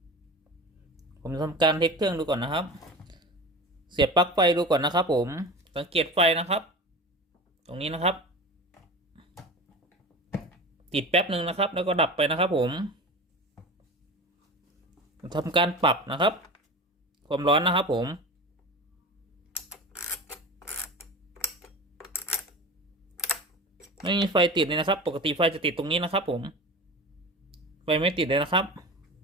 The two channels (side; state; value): both; normal; correlation 0.32